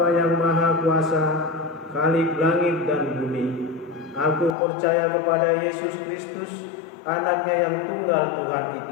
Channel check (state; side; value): drops out; right; at 4.5 s